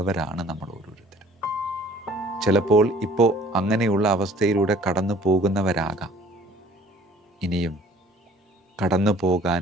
നമ്മൾ ഓരോരുത്തരും. ചിലപ്പോൾ ഇപ്പോൾ അങ്ങനെയുള്ള അവസ്ഥയിലൂടെ കടന്നു പോകുന്നവരാകാം. ഇനിയും കടന്നു പോകാൻ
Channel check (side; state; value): both; normal; correlation 0.53